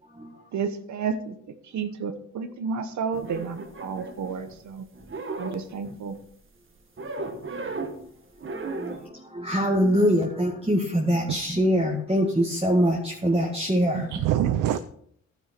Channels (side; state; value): both; normal; correlation 0.56